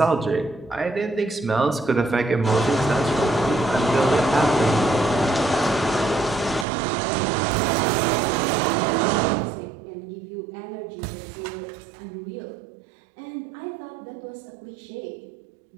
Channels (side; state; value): left; drops out; at 6.7 s